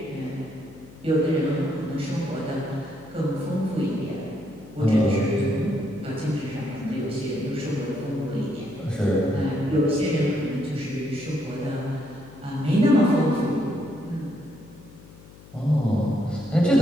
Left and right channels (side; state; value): left; noise; hum, 21 dB below the sound